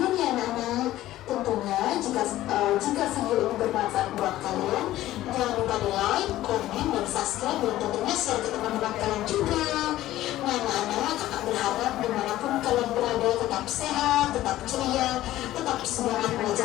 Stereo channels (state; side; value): quieter; right; 14.8 dB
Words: ya anak-anak. Tentunya jika video ini bermanfaat buat kalian, jangan lupa di like, komen, dan subscribe, dan tentunya share ke teman-teman kalian juga. Nah anak-anak, kakak berharap dimanapun kalian berada tetap sehat, tetap ceria, tetap semangat